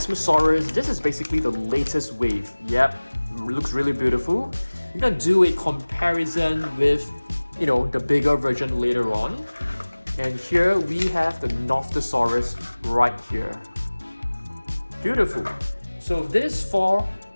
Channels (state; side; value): inverted; both; correlation -1.00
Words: This is basically the latest wave. Yep, looks really beautiful. We're gonna do a comparison with, you know, the bigger version later on. And here we have the Nothosaurus right here. Beautiful. So these four